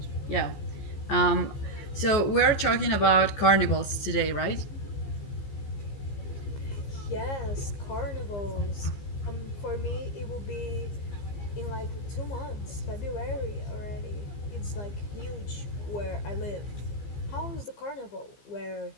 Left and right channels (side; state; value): right; late; 15 ms